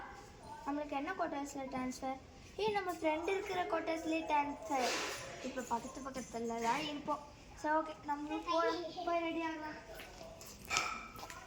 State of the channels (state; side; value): identical; both; correlation 1.00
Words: நம்மளுக்கு என்ன குவார்ட்டர்ஸில் ட்ரான்ஸ்ஃபர்? நம்ம ஃப்ரெண்டு இருக்கிற குவார்ட்டர்ஸ்லேயே ட்ரான்ஸ்ஃபர். இப்போ பக்கத்தில் தான் இருப்போம். சரி ஓகே நம்மளும் போய் ரெடி ஆகலாம்.